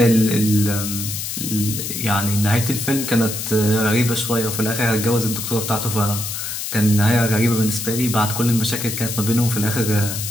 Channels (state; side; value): noise; left; hiss, 5 dB below the sound